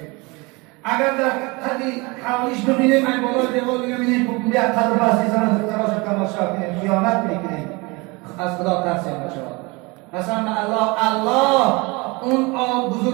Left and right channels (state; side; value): quieter; left; 26.0 dB